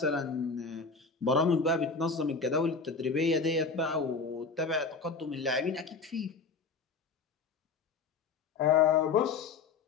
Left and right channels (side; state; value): right; quieter; 4.6 dB